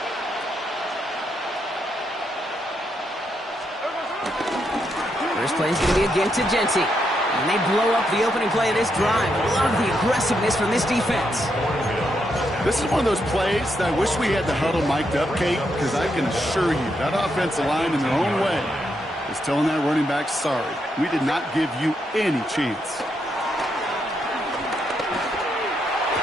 First play is going to be again to Genty. And they blow up the opening play of this drive. Love the aggressiveness from this defense. This is one of those plays that I wish we had the huddle mic'd up, Kate, because I can assure you that offensive line in their own way is telling that running back, sorry, we did not give you any chance.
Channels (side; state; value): both; normal; correlation 0.80